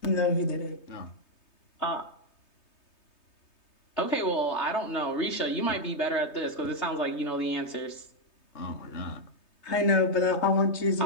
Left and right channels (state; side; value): late; right; 3.2 ms